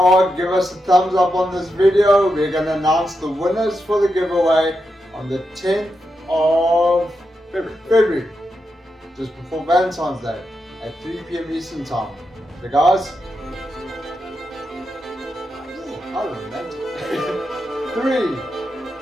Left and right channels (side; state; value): both; normal; correlation 0.86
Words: give us a thumbs up on this video. We're going to announce the winners for the giveaway on the 10th of February. Just before Valentine's Day at 3 p.m. Eastern Time. So guys, how romantic. 3,